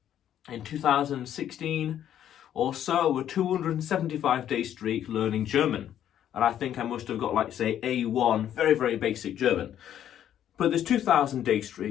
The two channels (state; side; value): quieter; right; 10.6 dB